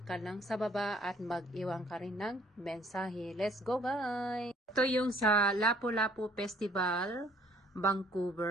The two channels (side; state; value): both; normal; correlation 0.60